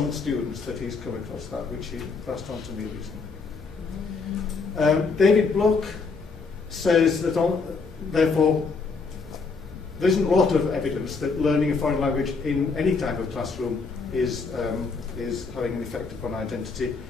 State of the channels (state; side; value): quieter; right; 4.5 dB